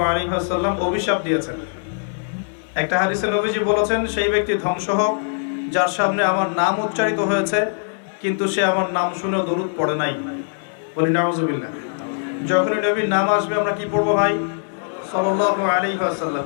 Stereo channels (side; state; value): right; silent; 65 dB below the other